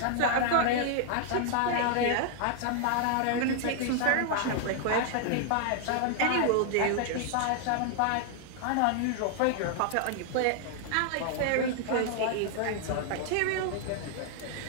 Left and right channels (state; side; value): different; both; correlation 0.00